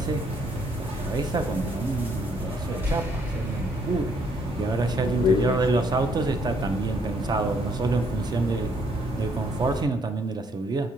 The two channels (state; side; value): normal; both; correlation 0.68